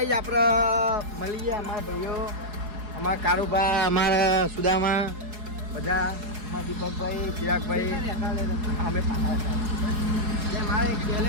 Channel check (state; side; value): late; left; 4.8 ms